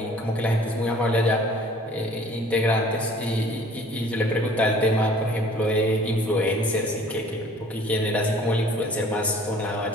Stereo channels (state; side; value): normal; both; correlation 0.52